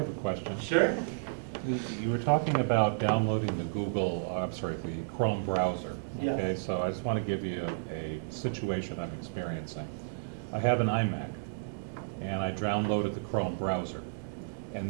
a question. Sure. You were talking about downloading the Chrome browser. Yes. Okay, so I just want to give you a situation I'm experiencing. I have an iMac, and I downloaded the Chrome browser.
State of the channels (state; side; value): quieter; left; 37.5 dB